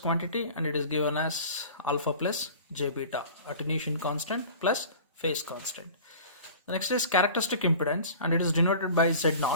and it is given as alpha plus j beta, attenuation constant plus phase constant. The next is characteristic impedance, and it is denoted by Z0.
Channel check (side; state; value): both; inverted; correlation -0.41